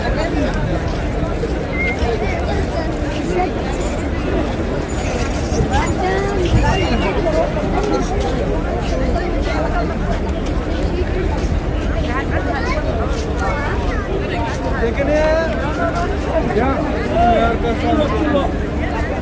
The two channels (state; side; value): identical; both; correlation 1.00